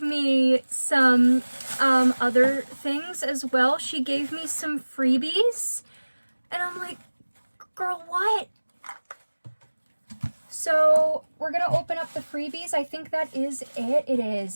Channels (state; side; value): inverted; both; correlation -1.00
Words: me some other things as well. She gave me some freebies, and I'm like, girl, what? So we're gonna open up the freebies. I think that is it. It